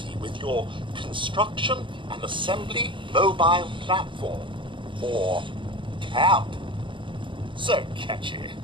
with your construction and assembly mobile platform, or camp. So catchy.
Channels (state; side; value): late; left; 0.24 ms